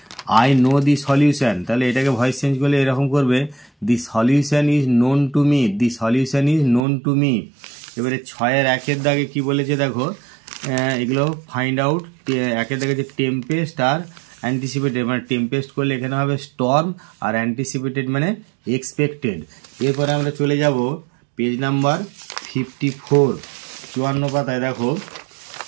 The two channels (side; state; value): left; drops out; at 6.9 s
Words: I know the solution, তাহলে এটাকে ভয়েস চেঞ্জ করলে এরকম করবে, the solution is known to me, the solution is known to me. এবারে 6-এর 1-এর দাগে কি বলেছে দেখো, এগুলো ফাইন্ড আউট। 1-এর দাগে যে টেম্পেস্ট আর অ্যান্টিসিপেটেড, মানে টেম্পেস্ট করলে এখানে হবে স্টর্ম, আর অ্যান্টিসিপেটেড মানে এক্সপেক্টেড। এরপরে আমরা চলে যাব পেজ নাম্বার 54, 54 পাতায় দেখো